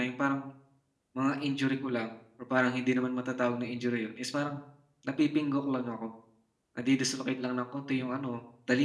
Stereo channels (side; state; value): both; identical; correlation 1.00